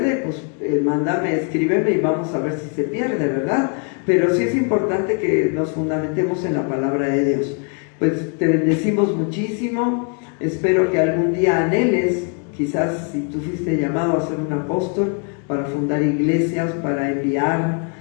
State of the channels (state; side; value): quieter; right; 38.8 dB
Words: pues mándame, escríbeme y vamos a ver si se pierde, ¿verdad? Pero sí es importante que nos fundamentemos en la palabra de Dios. Pues te bendecimos muchísimo, espero que algún día anheles, quizás si tú fuiste llamado a ser un apóstol, para fundar iglesias, para enviar